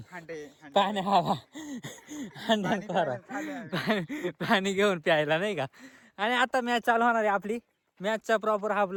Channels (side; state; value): both; identical; correlation 1.00